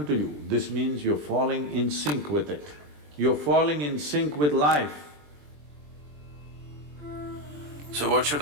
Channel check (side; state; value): left; late; 20 ms